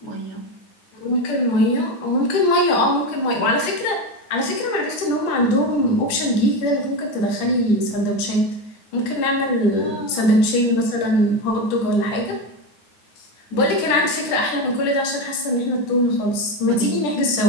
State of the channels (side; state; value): right; late; 9.5 ms